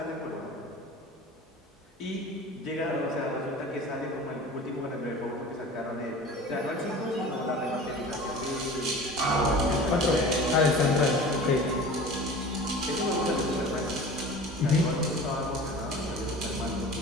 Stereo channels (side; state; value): both; normal; correlation 0.38